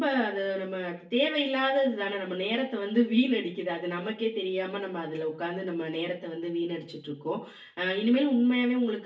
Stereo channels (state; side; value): identical; both; correlation 1.00